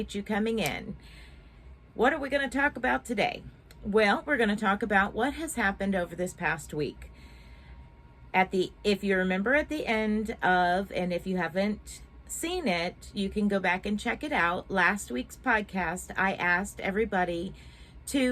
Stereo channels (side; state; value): both; identical; correlation 1.00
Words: you coming in. What are we going to talk about today? Well, we're going to talk about what has happened over this past week. If you remember at the end of, and if you haven't seen it, you can go back and check it out. Last week's podcast, I asked everybody